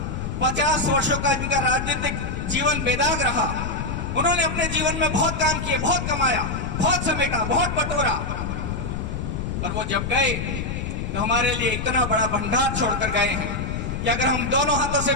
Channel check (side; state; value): left; noise; rumble, 4 dB below the sound